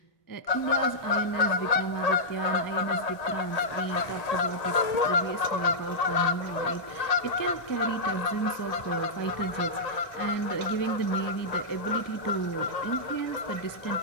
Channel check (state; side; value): late; right; 1.8 ms